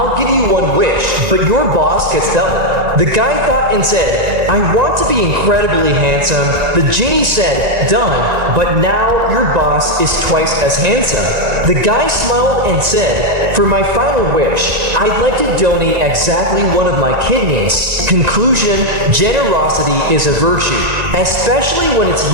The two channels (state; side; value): late; left; 1.9 ms